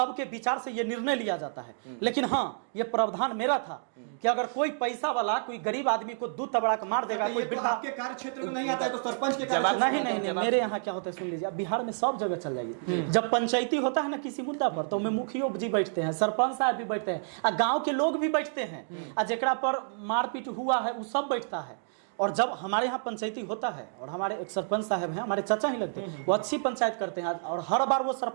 विचार से ये निर्णय लिया जाता है। लेकिन हाँ, ये प्रावधान मेरा था कि अगर कोई पैसा वाला कोई गरीब आदमी को दूध तबड़ा के मार देगा, कोई वृद्धा, आपके कार्य क्षेत्र में नहीं आता है तो सरपंच के कार्य नहीं, मेरे यहाँ क्या होता है सुन लीजिए, बिहार में सब जगह चल जाइए। जब पंचायती होता है ना किसी मुद्दा पर, तो में मुखिया जी बैठते हैं, सरपंच साहब भी बैठते हैं, गांव के लोग भी बैठते हैं, जेकरा पर मारपीट हुआ है वो सब बैठता है। और जब हमारे यहाँ पंचायती होता है और हमारे एक सरपंच साहब हैं, हमारे चाचा ही लगते हैं, वो अच्छी पंचायत करते हैं और हर बार वो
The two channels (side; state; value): left; silent; digital silence